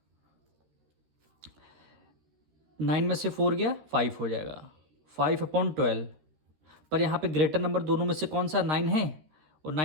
9 में से 4 गया, 5 हो जाएगा। 5/12। पर यहाँ पे ग्रेटर नंबर दोनों में से कौन सा, 9 है, और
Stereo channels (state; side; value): late; left; 13 ms